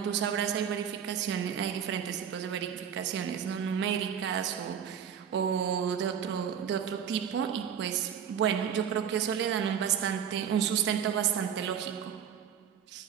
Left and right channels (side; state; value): left; quieter; 8.3 dB